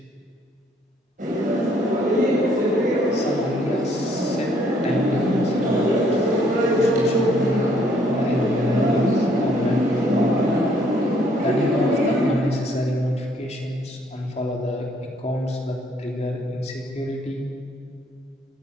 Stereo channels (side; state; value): both; normal; correlation 0.65